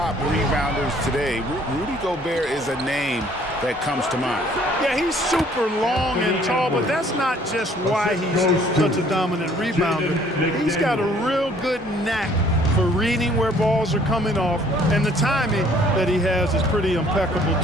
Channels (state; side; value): normal; both; correlation 0.59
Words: rebounders today, Rudy Gobert is a name that comes to mind. Yeah, he's super long and tall, but that's not just why he's such a dominant rebounder. He's got a real good knack for reading where balls are coming off, and the timing that he has is pretty impeccable